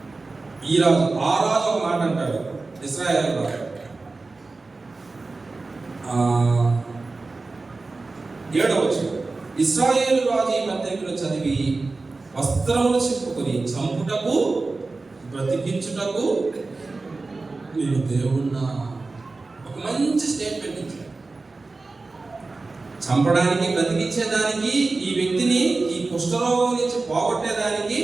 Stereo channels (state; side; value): quieter; left; 3.6 dB